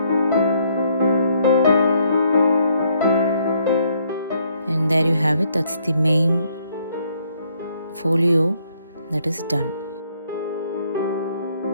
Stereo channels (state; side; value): inverted; both; correlation -0.70